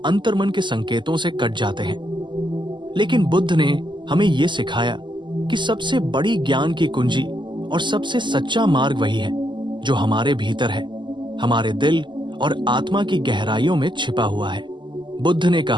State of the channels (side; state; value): left; late; 0.22 ms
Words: अंतर्मन के संकेतों से कट जाते हैं। लेकिन बुद्ध ने हमें यह सिखाया कि सबसे बड़ी ज्ञान की कुंजी और सबसे सच्चा मार्ग वही है जो हमारे भीतर है, हमारे दिल और आत्मा की गहराइयों में छिपा हुआ है। बुद्ध ने